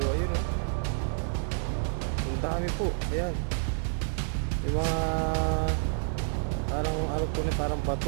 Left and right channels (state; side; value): silent; left; digital silence